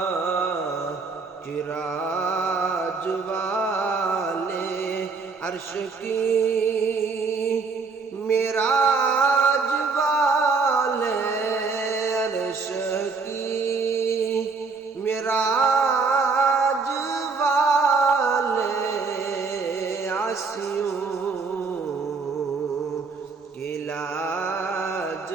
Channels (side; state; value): left; quieter; 4.5 dB